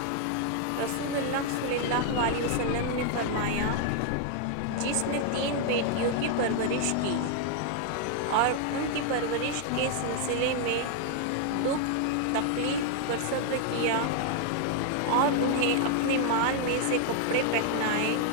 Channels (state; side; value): different; both; correlation 0.00